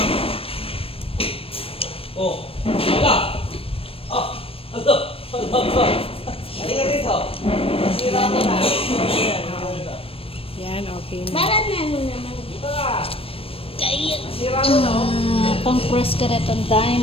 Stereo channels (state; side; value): late; right; 0.28 ms